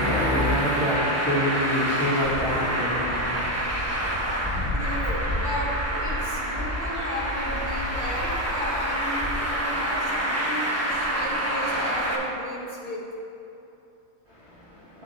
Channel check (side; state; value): both; normal; correlation 0.08